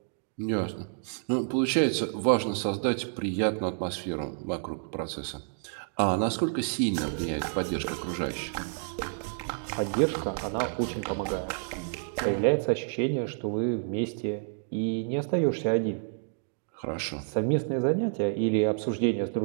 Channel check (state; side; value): silent; left; digital silence